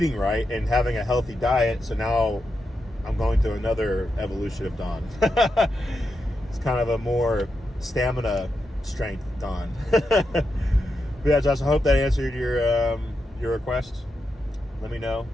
right and having a healthy diet. So now I'm going through another evolution of Dawn. It's kind of a more stamina strength Dawn. But yeah, Josh, I hope that answered your request. Let me know.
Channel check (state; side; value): normal; both; correlation 0.86